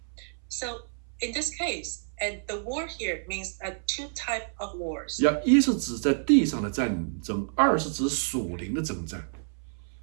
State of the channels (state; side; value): silent; left; 59 dB below the other